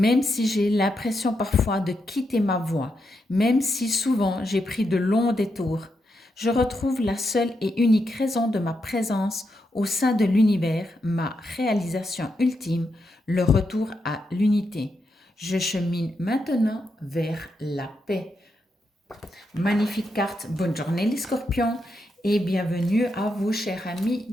si j'ai l'impression parfois de quitter ma voie, même si souvent j'ai pris de longs détours. Je retrouve la seule et unique raison de ma présence au sein de l'univers, ma réalisation ultime, le retour à l'unité. Je chemine maintenant vers la paix. Magnifique carte, bonne journée les scorpions et bienvenue à vous chers amis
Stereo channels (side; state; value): both; normal; correlation 0.83